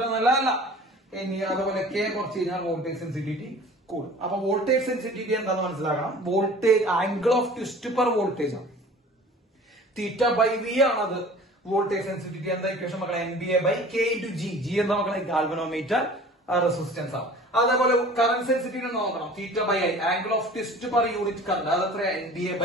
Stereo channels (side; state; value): both; normal; correlation 0.45